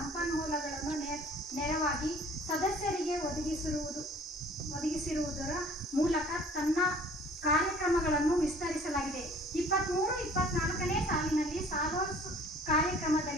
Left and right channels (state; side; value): normal; both; correlation 0.52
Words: ನೆರವಾಗಿ ಸದಸ್ಯರಿಗೆ ಒದಗಿಸಿರುವುದರ ಮೂಲಕ ತನ್ನ ಕಾರ್ಯಕ್ರಮಗಳನ್ನು ವಿಸ್ತರಿಸಲಾಗಿದೆ. 23-24ನೇ ಸಾಲಿನಲ್ಲಿ ಸಾಲೋಸ್